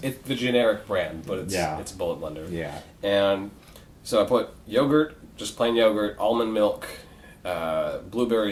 the generic brand, but it's a bullet blender. Yeah. And so I put yogurt, just plain yogurt, almond milk,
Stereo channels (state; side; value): identical; both; correlation 1.00